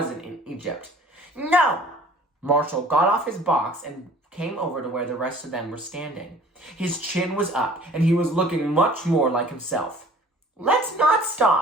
in Egypt. No! Marshall got off his box and came over to where the rest of them were standing. His chin was up, and he was looking much more like himself. Let's not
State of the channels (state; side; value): normal; both; correlation 0.50